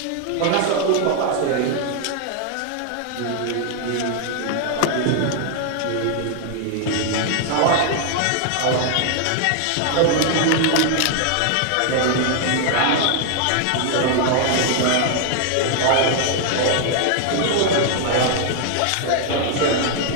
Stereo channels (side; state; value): both; different; correlation 0.00